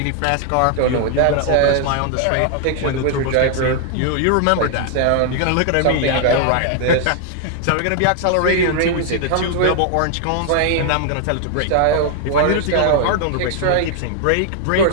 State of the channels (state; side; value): different; both; correlation 0.00